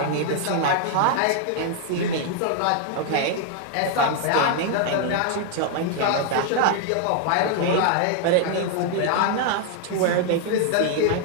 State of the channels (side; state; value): both; different; correlation 0.00